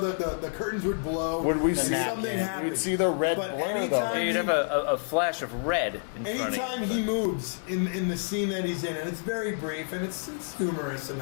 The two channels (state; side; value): silent; right; 59 dB below the other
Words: curtains would blow. Would we and see something happened? We'd see the red But blur, anytime You'd have a flash of red. In front of anytime you. he moves in the scene that he's in, and it's very brief and it's humorous